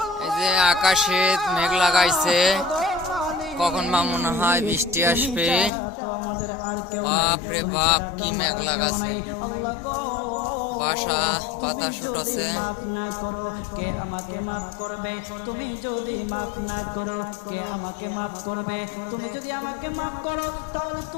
যে আকাশে মেঘ লাগাইছে, কখন বা মনে হয় বৃষ্টি আসবে। বাপ রে বাপ, কি মেঘ লাগাছে, বাসা বাতাস উঠছে। মাফ না করো কে আমাকে মাফ করবে? তুমি যদি মাফ না করো কে আমাকে মাফ করবে? তুমি যদি আমাকে মাফ করো তাহলে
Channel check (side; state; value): right; drops out; at 5.7 s